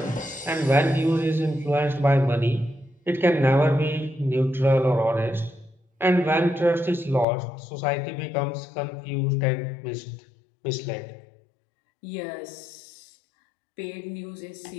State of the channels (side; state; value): right; drops out; at 7.2 s